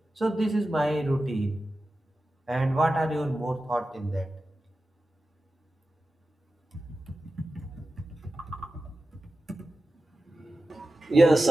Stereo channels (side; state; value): both; normal; correlation 0.93